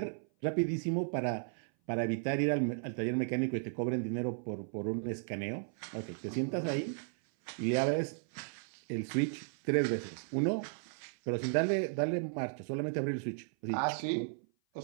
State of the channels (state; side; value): silent; left; 54 dB below the other